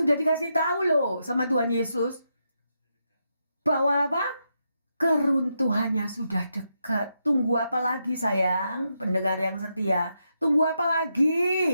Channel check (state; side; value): inverted; both; correlation -0.83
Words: dikasih tahu loh sama Tuhan Yesus. Bahwa apa? Keruntuhannya sudah dekat. Tunggu apa lagi sayang? Pendengar yang setia. Tunggu apa